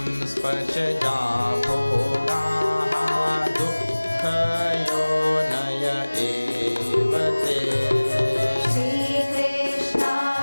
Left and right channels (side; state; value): both; inverted; correlation -1.00